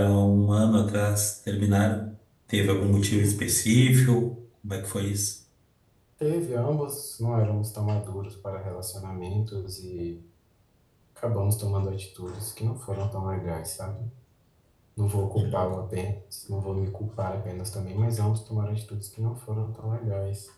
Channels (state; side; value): identical; both; correlation 1.00